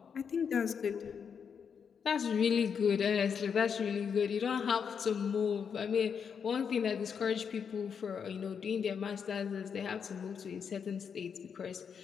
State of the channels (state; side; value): quieter; right; 6.8 dB